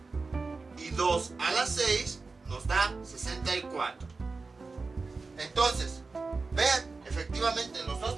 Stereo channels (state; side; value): quieter; left; 4.0 dB